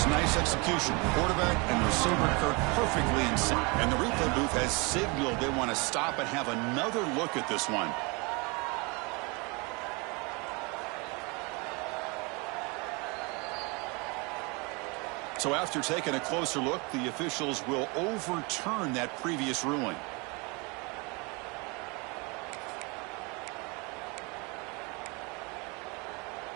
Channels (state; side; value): quieter; left; 29.2 dB